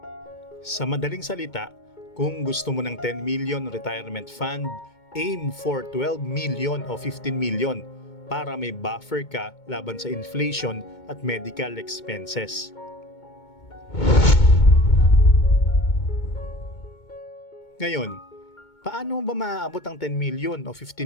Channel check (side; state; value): right; late; 2.2 ms